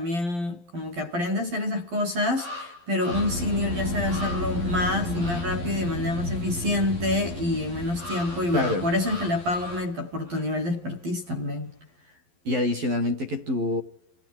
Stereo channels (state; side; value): late; left; 12 ms